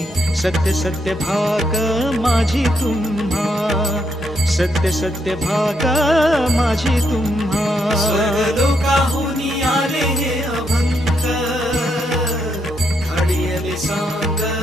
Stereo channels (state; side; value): normal; both; correlation 0.78